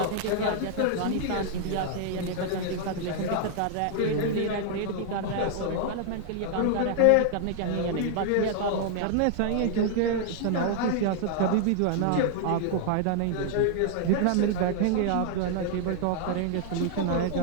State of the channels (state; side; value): different; both; correlation 0.00